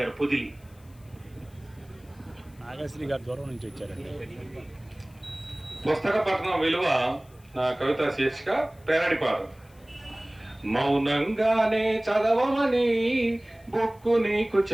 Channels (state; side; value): noise; left; hiss, 30 dB below the sound